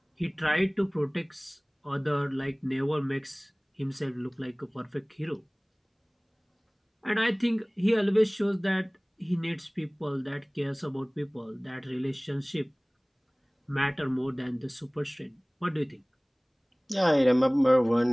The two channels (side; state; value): both; identical; correlation 1.00